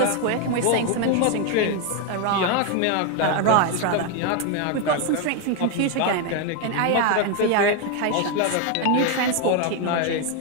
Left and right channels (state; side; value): different; both; correlation 0.01